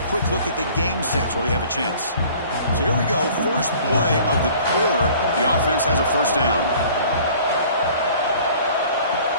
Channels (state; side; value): inverted; both; correlation -0.50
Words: a quick look at the game stats while we have a chance. So here we go. First play of the quarter. The offense has a first down.